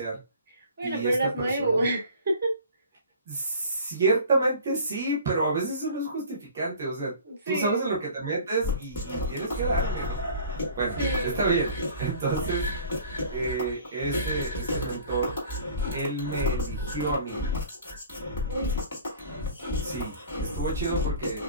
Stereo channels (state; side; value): inverted; both; correlation -0.46